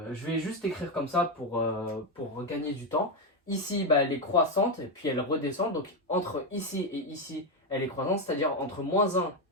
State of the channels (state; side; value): normal; both; correlation 0.07